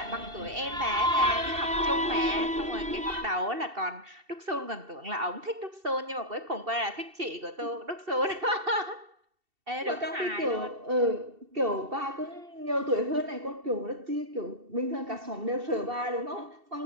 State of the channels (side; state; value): left; late; 2.7 ms